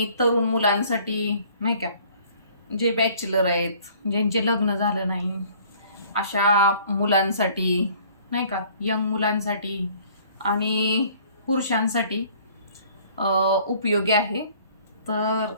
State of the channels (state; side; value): inverted; both; correlation -0.55